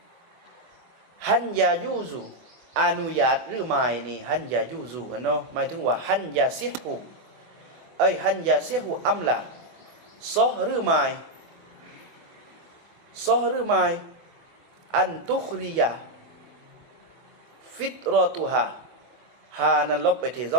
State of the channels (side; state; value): left; late; 24 ms